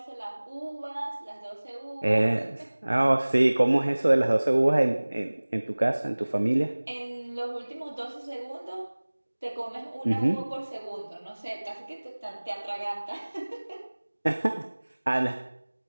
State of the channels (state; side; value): inverted; both; correlation -1.00